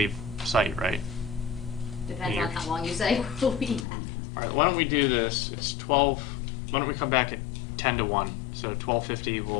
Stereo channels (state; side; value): drops out; right; at 3.9 s